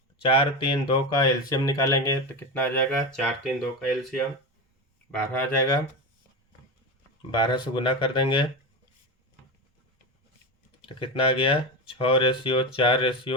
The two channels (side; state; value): both; normal; correlation 0.20